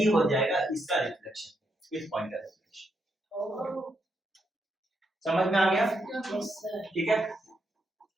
हो जाएगा इसका रिफ्लेक्शन, इस पॉइंट का रिफ्लेक्शन। समझ में आ गया? ठीक है?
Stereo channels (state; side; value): normal; both; correlation 0.80